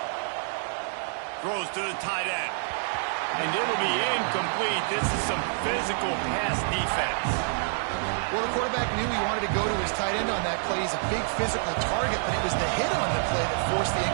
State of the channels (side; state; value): left; silent; digital silence